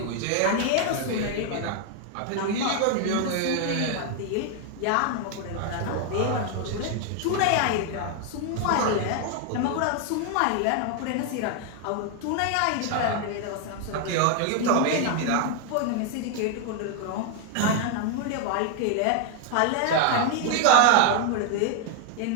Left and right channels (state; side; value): different; both; correlation 0.00